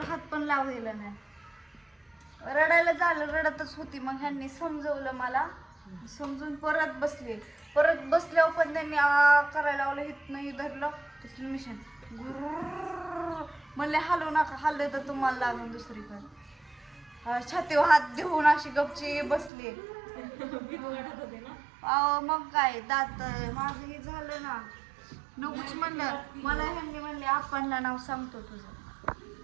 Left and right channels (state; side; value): drops out; left; at 19.5 s